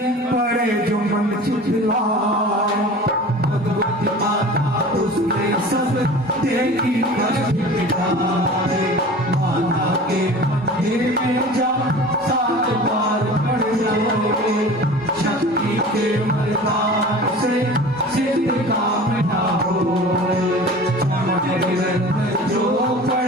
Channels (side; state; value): both; normal; correlation 0.39